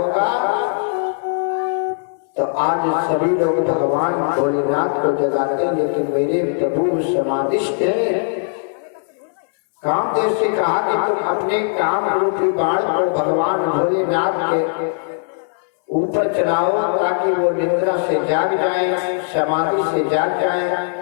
तो आज सभी लोग भगवान भोलेनाथ को जगाते हैं, लेकिन मेरे प्रभु समाधिष्ठ हैं। कामदेव से कहा कि तुम अपने काम रूपी बाण को भगवान भोलेनाथ के ऊपर चलाओ ताकि वो निद्रा से जाग जाए, समाधि से जाग जाए।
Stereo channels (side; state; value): right; silent; 65 dB below the other